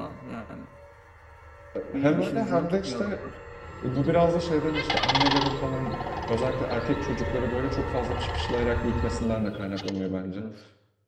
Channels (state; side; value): identical; both; correlation 1.00